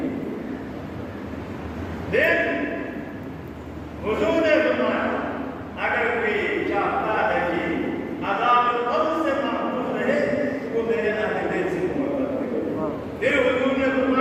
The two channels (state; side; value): identical; both; correlation 1.00